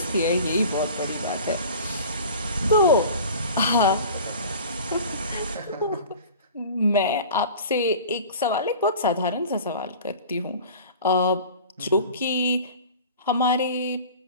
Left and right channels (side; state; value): both; inverted; correlation -0.41